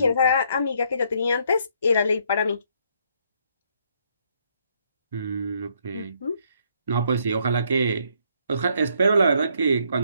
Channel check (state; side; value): inverted; both; correlation -0.70